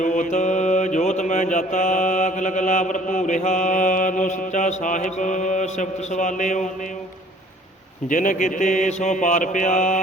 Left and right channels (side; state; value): both; normal; correlation 0.54